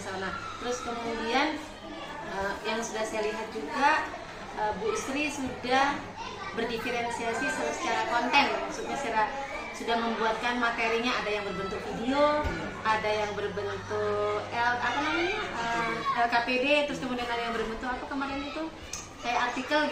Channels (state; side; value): identical; both; correlation 1.00